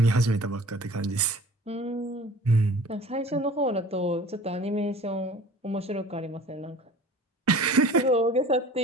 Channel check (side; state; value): both; normal; correlation 0.45